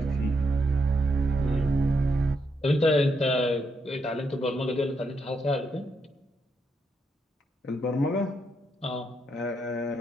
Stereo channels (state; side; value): normal; both; correlation 0.79